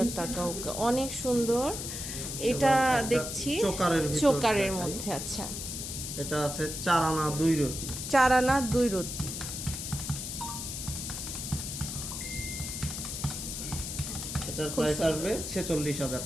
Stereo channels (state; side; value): noise; left; hiss, 6 dB below the sound